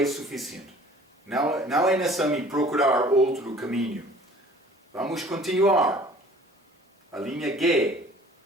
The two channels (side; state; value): both; normal; correlation 0.50